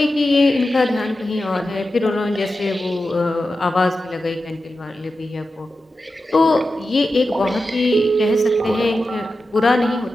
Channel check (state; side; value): normal; both; correlation 0.92